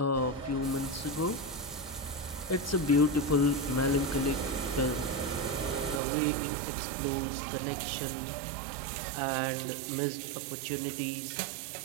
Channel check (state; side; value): drops out; left; at 6.0 s